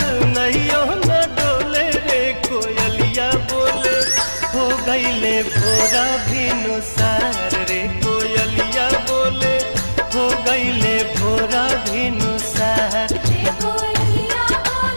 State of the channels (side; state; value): both; inverted; correlation -1.00